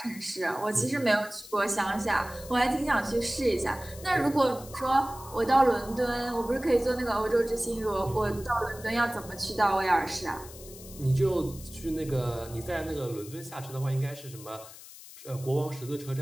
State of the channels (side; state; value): left; noise; hiss, 17 dB below the sound